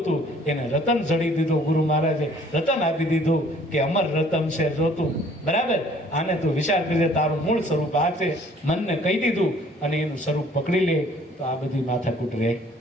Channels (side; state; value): both; normal; correlation 0.57